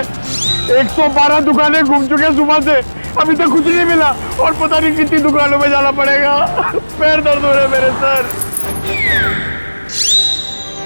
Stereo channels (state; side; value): inverted; both; correlation -1.00